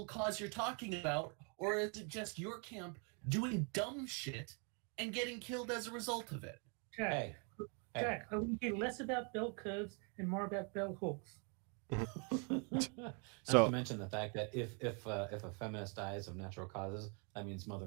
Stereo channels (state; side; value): quieter; left; 36.7 dB